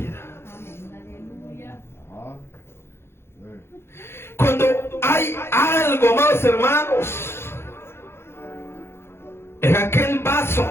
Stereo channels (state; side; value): late; right; 0.12 ms